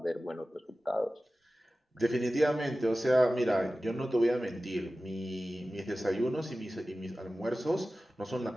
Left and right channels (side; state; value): both; normal; correlation 0.96